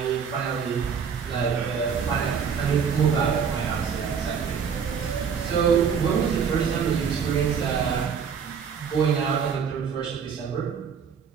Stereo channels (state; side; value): quieter; left; 6.8 dB